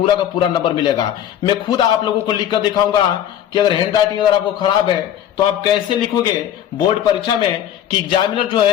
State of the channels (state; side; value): quieter; right; 10.8 dB